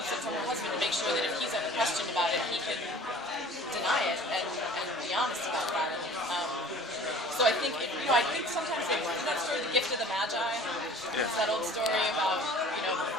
it from her husband to make sure that if he's ever questioned about it, he can deny it and be honest about that. So I think, I think sometimes that story, The Gift of the Magi, it's that old story about,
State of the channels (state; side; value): normal; both; correlation 0.46